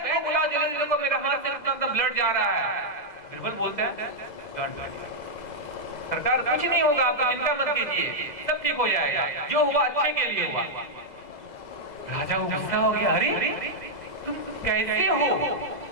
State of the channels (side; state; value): right; late; 2.0 ms